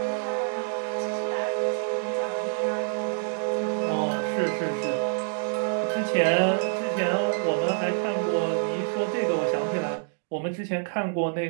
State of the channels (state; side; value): silent; left; digital silence